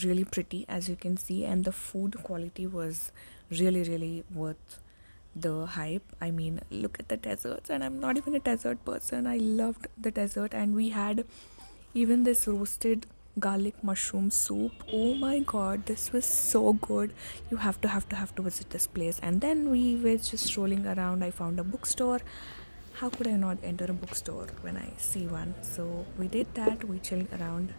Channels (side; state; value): both; inverted; correlation -1.00